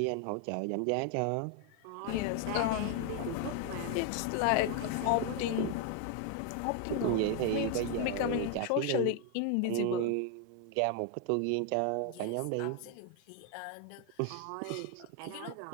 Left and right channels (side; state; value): both; different; correlation 0.01